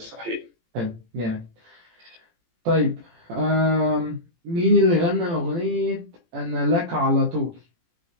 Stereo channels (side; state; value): left; late; 18 ms